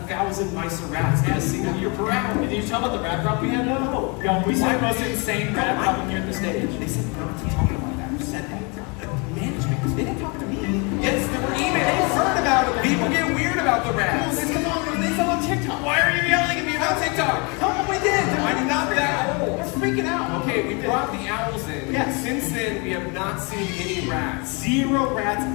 mice or rats in a single year per owl. Did you tell about the rat problem we had? No. Yo, we said the most insane rat problem here at the stage. They said not to talk about that. Who said that? Management. They didn't talk to me. Yes, there were emails. Heard about it. People get weird about the rats. Come on, they saw on TikTok. Why are you yelling at me about TikTok? Come on, we did. I'm not that old. We're freaking out. Okay, we brought the owls in. Yes. Since then, we have not seen any rats. 0 rats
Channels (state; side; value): quieter; right; 31.4 dB